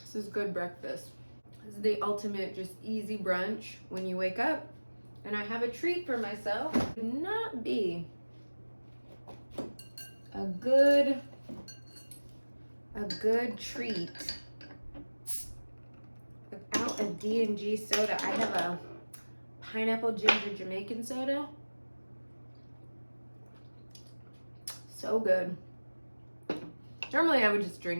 is good breakfast. This is the ultimate just easy brunch when you wake up. And I have a treat for myself. It would not be a good treat without a D&G soda. I have a pineapple ginger Jamaican soda. So good. Normally I would just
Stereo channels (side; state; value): both; inverted; correlation -1.00